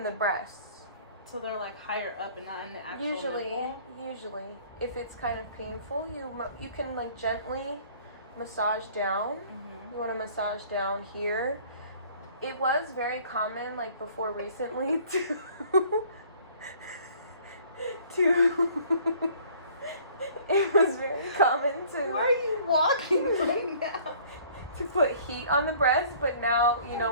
the breasts. So they're like higher up and not in the actual nipple? Usually, if it's kind of painful, you can like gently massage down. You want to massage down here. It was very common, like before recently, it was very common to. Where are you walking right now? To put heat on the breast, but now, you know,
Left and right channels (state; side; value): inverted; both; correlation -0.54